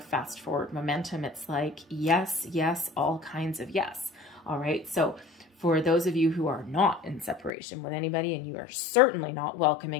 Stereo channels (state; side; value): drops out; right; at 7.5 s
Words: fast forward momentum. It's like, yes, yes, all kinds of yes. All right. So for those of you who are not in separation with anybody, and you are certainly not